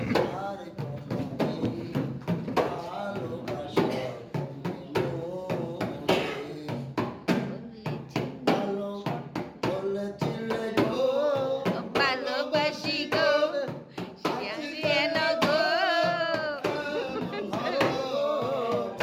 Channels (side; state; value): both; identical; correlation 1.00